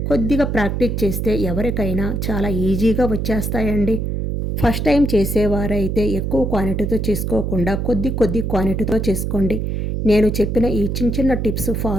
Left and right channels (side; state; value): right; noise; hum, 1 dB below the sound